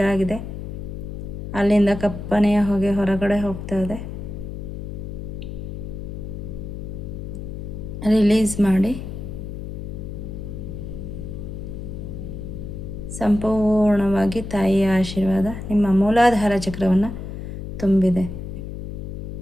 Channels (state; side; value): noise; left; hum, 8 dB below the sound